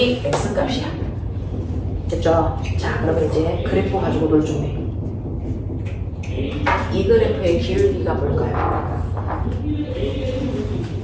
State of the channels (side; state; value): both; identical; correlation 1.00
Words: X값이야. 됐죠? 자, 그러면 이제 그래프 가지고 놀 준비. 이 그래프의 기울기가 뭘까요?